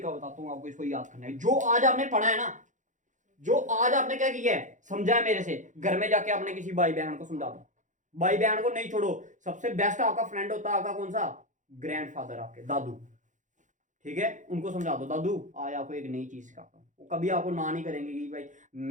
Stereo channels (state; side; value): late; left; 0.36 ms